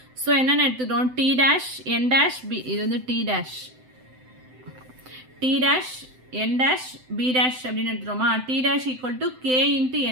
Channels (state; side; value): late; left; 7.8 ms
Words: So என்னென்னு எடுத்துக்கிறோம்? t dash n dash b. இது வந்து t dash n dash b dash அப்படின்னு எடுத்துட்டோமா? t dash equal to k into